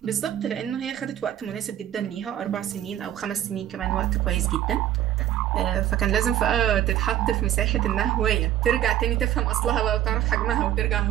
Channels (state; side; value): quieter; left; 11.9 dB